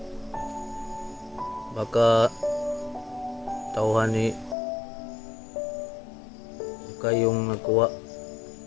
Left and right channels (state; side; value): drops out; right; at 4.5 s